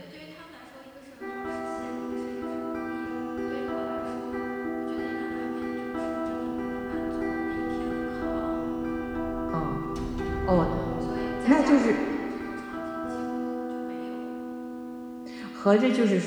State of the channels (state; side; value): identical; both; correlation 1.00